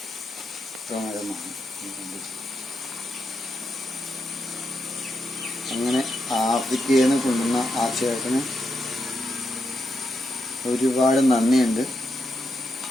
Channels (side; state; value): both; normal; correlation 0.84